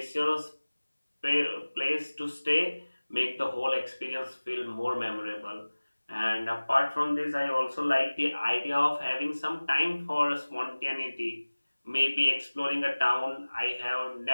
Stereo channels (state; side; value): inverted; both; correlation -1.00